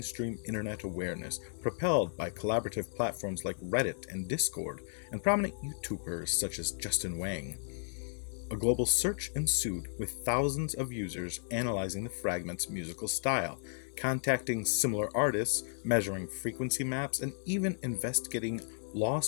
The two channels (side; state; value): right; silent; digital silence